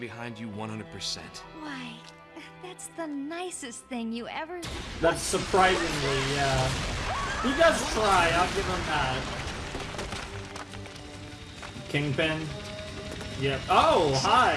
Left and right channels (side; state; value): both; identical; correlation 1.00